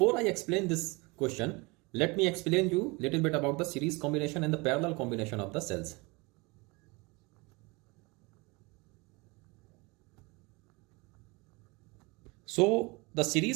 I explain this question, let me explain you little bit about the series combination and the parallel combination of the cells. So the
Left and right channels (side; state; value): left; quieter; 26.4 dB